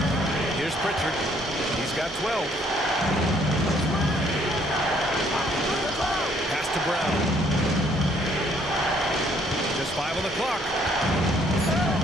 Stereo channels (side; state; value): both; normal; correlation 0.65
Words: Here's Pritchard. He's got 12. Pass to Brown. Just 5 on the clock.